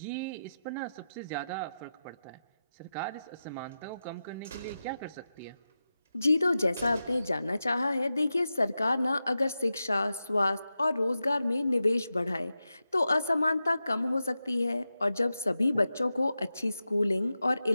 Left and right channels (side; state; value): both; inverted; correlation -0.91